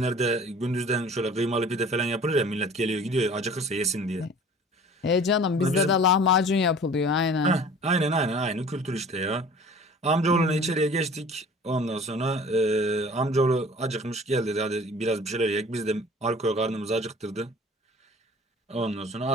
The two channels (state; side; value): normal; both; correlation 0.46